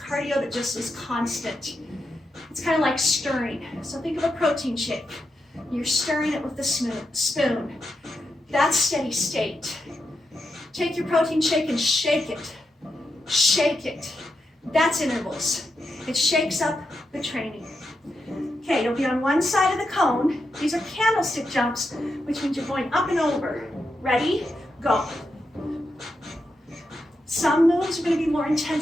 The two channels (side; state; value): both; normal; correlation 0.86